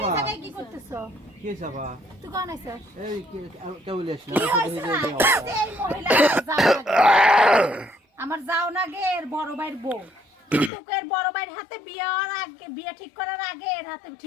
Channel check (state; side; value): drops out; right; at 10.7 s